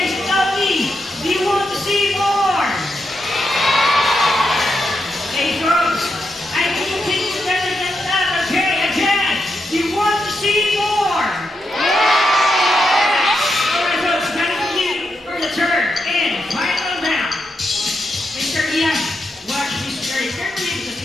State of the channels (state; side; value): normal; both; correlation 0.84